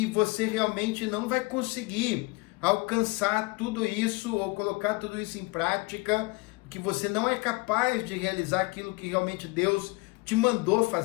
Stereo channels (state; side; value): quieter; right; 25.8 dB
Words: você realmente não vai conseguir alcançar tudo isso ou colocar tudo isso em prática, que você não é capaz de realizar aquilo que realmente Deus te mandou